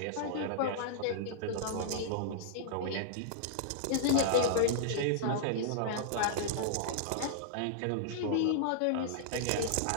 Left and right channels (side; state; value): both; different; correlation -0.01